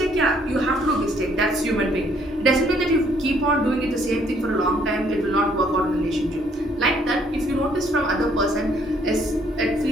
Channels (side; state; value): both; normal; correlation 0.65